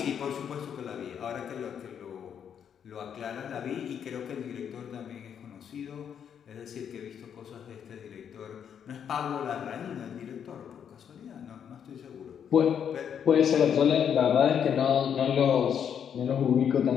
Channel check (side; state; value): right; quieter; 8.2 dB